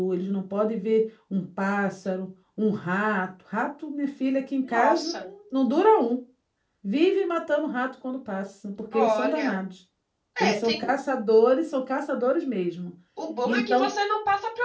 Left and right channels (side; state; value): both; identical; correlation 1.00